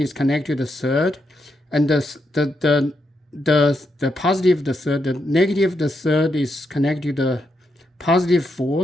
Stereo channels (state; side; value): normal; both; correlation 0.82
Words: connected to the third, and the positive of the third, the negative of the third is connected to the positive